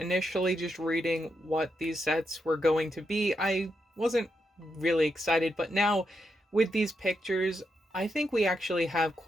just reading what these sets were going to be, I wasn't really excited, but now with these pictures, I think we actually have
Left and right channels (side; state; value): both; normal; correlation 0.83